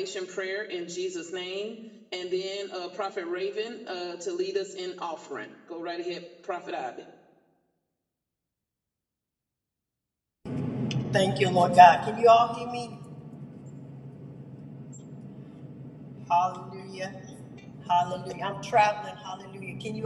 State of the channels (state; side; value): identical; both; correlation 1.00